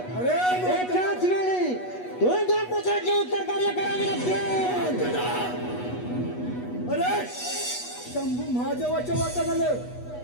अरे एकाच वेळी दोन दोन प्रकारचे उत्तर कार्य करावे लागते. अरे शंभू महादेवाच्या वाटा झालं.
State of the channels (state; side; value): late; right; 8.2 ms